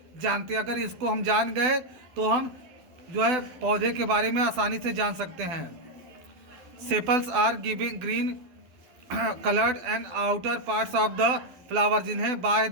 जानते हैं। अगर इसको हम जान गए तो हम जो है पौधे के बारे में आसानी से जान सकते हैं। Sepals are giving green coloured and outer parts of the flower, जिन्हें बाह्य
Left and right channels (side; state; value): left; late; 12 ms